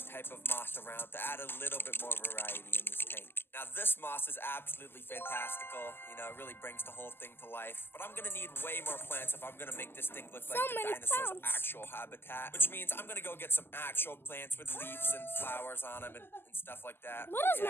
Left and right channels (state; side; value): late; right; 0.11 ms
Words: type of moss around to add a little bit more variety in this tank. Now this moss is absolutely fantastical, you know, it really brings the whole thing to life. But I'm gonna need way more plants if I'm gonna make this thing look like the dinosaur's actual habitat. Which means I'm gonna go get some actual plants with leaves and flowers on them and stuff like that.